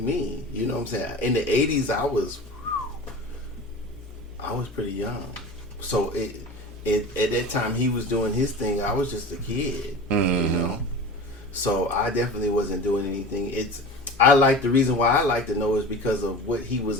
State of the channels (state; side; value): normal; both; correlation 0.34